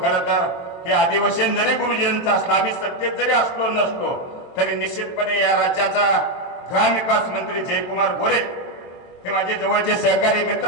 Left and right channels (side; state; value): right; late; 23 ms